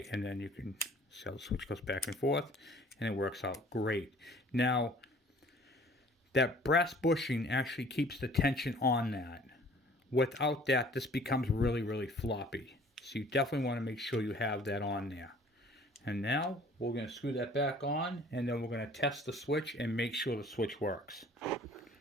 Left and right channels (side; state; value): both; normal; correlation 0.52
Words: and then you can see how the switch goes back and forth, and it works out great. Now, that brass bushing actually keeps the tension on that. Without that, this becomes really, really floppy. So you definitely want to make sure you have that on there. And now, we're going to screw that back on, and then we're going to test the switch and make sure the switch works.